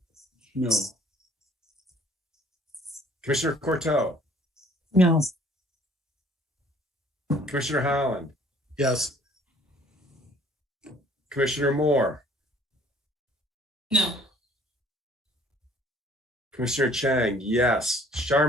No. Commissioner Courteau. No. Commissioner Holland. Yes. Commissioner Moore. No. Commissioner Chang, yes.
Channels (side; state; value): both; normal; correlation 0.56